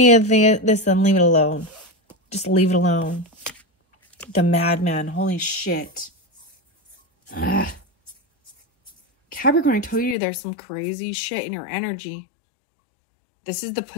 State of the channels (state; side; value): drops out; right; at 10.2 s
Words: of this, then leave it alone. Just leave it alone. The madman. Holy shit. Ugh. Capricorn, I told you there's some crazy shit in your energy. This is the